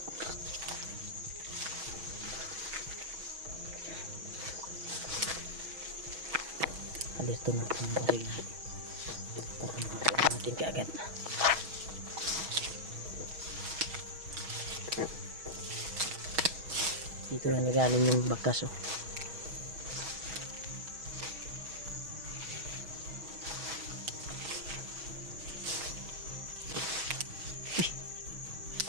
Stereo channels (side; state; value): left; late; 6.2 ms